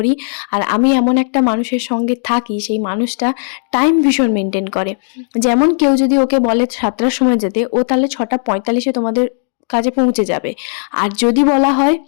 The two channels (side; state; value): right; silent; digital silence